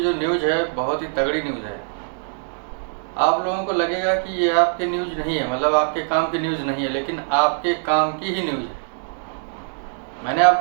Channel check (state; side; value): silent; left; digital silence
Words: जो न्यूज़ है बहुत ही तगड़ी न्यूज़ है। आप लोगों को लगेगा कि ये आपके न्यूज़ नहीं है, मतलब आपके काम की न्यूज़ नहीं है, लेकिन आपके काम की ही न्यूज़ है। मैंने